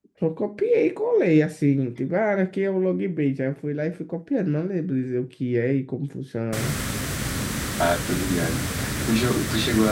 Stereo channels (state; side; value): identical; both; correlation 1.00